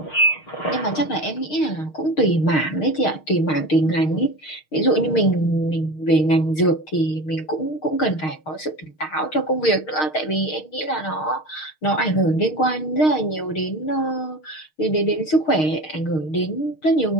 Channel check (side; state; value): right; late; 6.5 ms